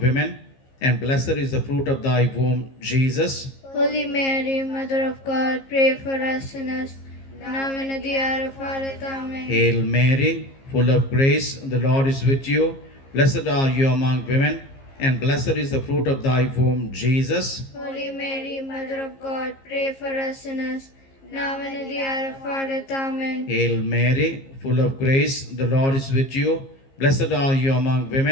and blessed is the fruit of thy womb, Jesus. Holy Mary, Mother of God, pray for us sinners, now and at the hour of our death. Amen. Hail Mary, full of grace, the Lord is with you. Blessed are you among women, and blessed is the fruit of thy womb, Jesus. Holy Mary, Mother of God, pray for us sinners, now and at the hour of our death. Amen. Hail Mary, full of grace, the Lord is with you. Blessed are you among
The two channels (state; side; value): late; right; 15 ms